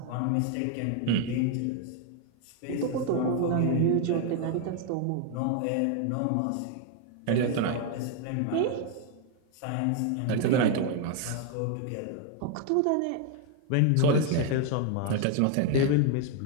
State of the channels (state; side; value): different; both; correlation 0.01